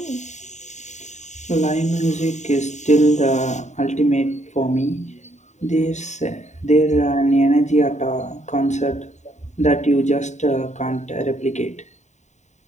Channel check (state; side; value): late; right; 0.34 ms